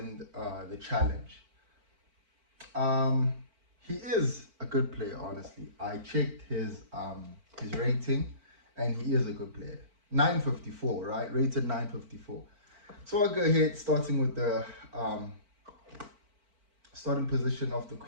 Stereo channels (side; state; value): left; late; 4.5 ms